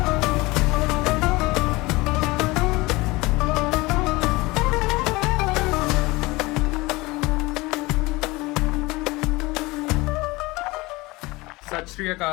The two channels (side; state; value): right; quieter; 22.2 dB